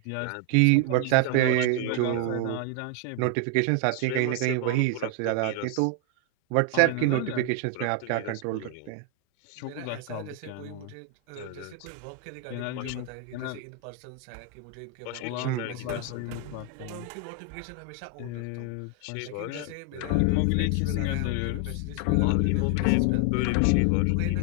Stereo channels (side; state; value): both; different; correlation 0.00